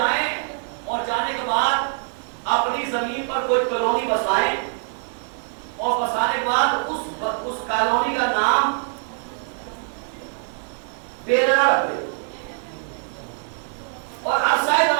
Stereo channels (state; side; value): silent; left; 63 dB below the other